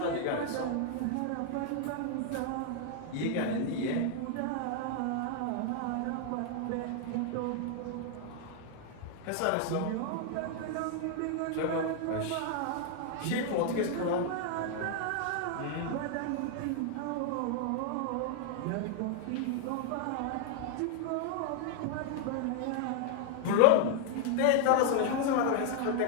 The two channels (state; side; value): different; both; correlation 0.00